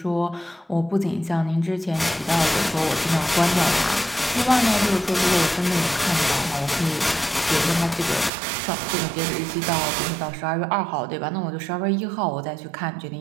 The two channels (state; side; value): drops out; left; at 8.3 s